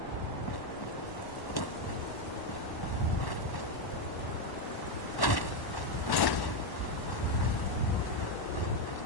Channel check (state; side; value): late; right; 1.1 ms